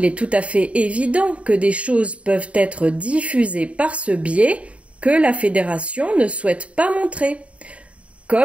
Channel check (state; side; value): late; left; 0.063 ms